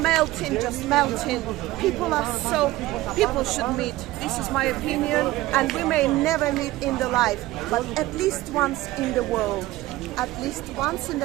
melting, just melting. People should meet. This is my opinion, and we may never meet in the life, but at least once in the world, at least once in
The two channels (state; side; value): quieter; left; 17.5 dB